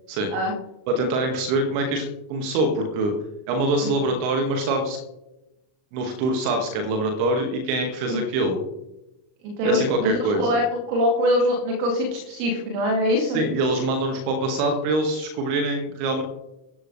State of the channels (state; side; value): late; left; 38 ms